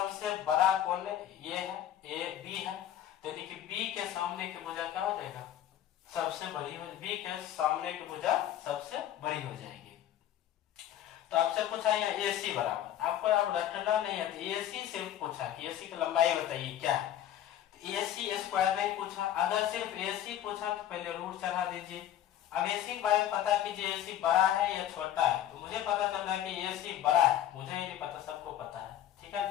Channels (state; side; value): quieter; right; 11.4 dB